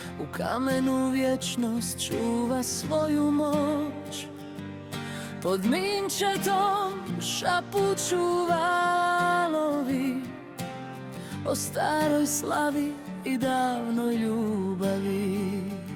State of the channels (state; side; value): identical; both; correlation 1.00